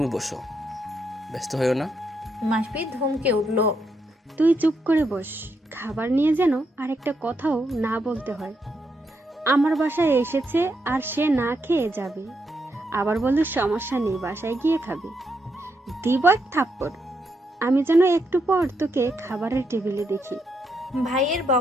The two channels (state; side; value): normal; both; correlation 0.80